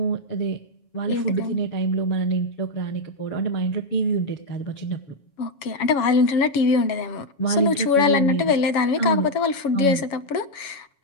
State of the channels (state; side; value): late; right; 7.2 ms